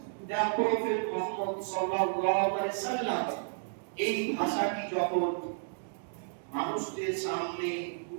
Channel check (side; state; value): left; silent; digital silence